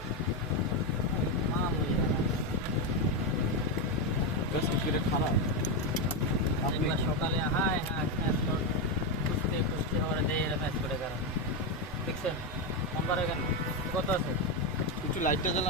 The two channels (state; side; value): normal; both; correlation 0.08